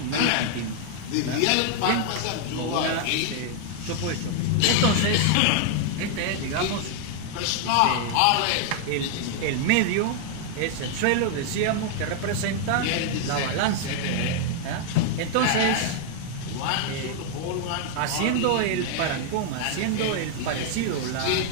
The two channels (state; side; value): different; both; correlation 0.00